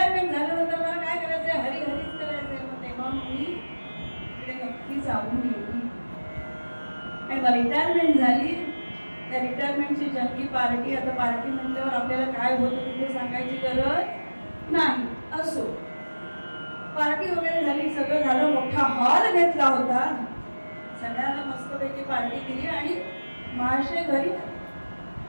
झाल्यानंतर मला काय करायचंय, हरिहरीच करायचंय, मग तेव्हा मी नक्की जाऊन येईल. आणि मग रिटायरमेंट झाली, त्या रिटायरमेंटची जंगी पार्टी. आता पार्टी म्हटल्यावर आपल्याला काय होतं तिथे सांगायची गरज नाही. असो, पार्टी वगैरे झाली, सगळं झालं, मोठा हॉल घेतला होता, सगळ्यांना मस्तपैकी पार्टी दिली आणि महाशय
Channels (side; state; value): both; inverted; correlation -1.00